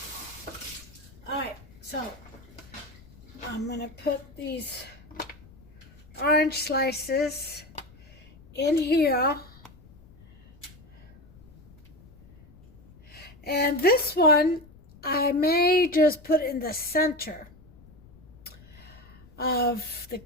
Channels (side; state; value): left; noise; rumble, 23 dB below the sound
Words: in. Alright, so I'm going to put these orange slices in here. And this one I may just put in the center of the